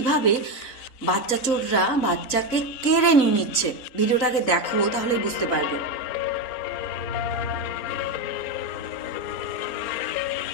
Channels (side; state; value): right; late; 4.0 ms